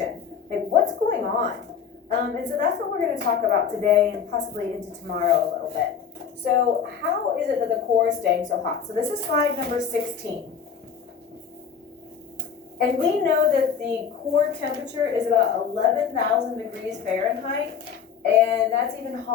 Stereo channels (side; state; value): right; quieter; 7.0 dB